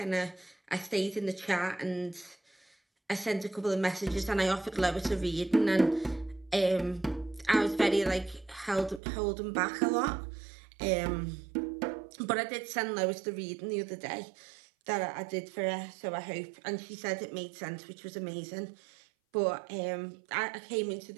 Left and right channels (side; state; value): left; drops out; at 9.0 s